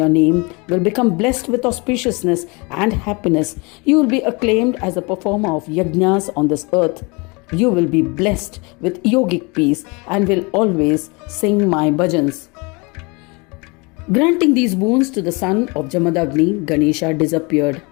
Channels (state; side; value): quieter; right; 28.4 dB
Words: name will become blessed with auspiciousness and happiness. You will be acclaimed as a performer of yajnas on this earth. You will be blessed with yogic peace and will always sing my bhajans." Granting these boons to the son of Jamadagni, Ganesha disappeared.